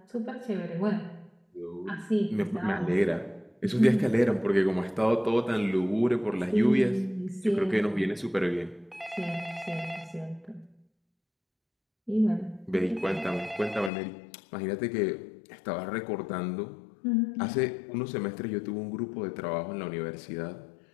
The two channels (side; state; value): right; drops out; at 13.9 s